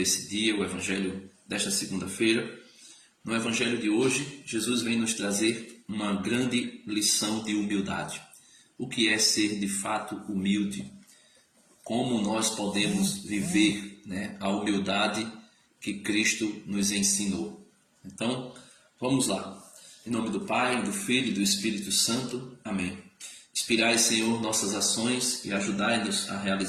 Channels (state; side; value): identical; both; correlation 1.00